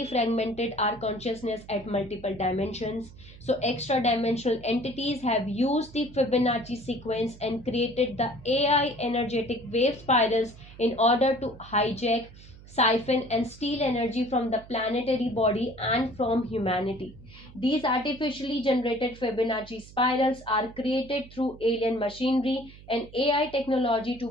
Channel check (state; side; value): noise; right; hum, 20 dB below the sound